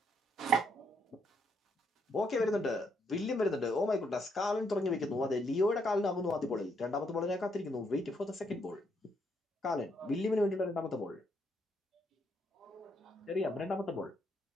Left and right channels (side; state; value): both; normal; correlation 0.74